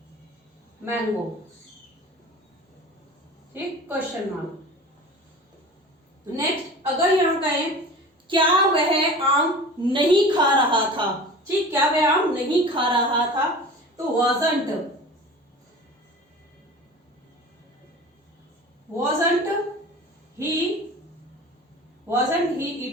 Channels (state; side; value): normal; both; correlation 0.38